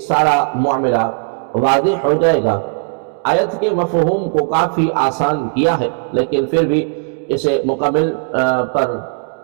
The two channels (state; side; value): silent; left; 69 dB below the other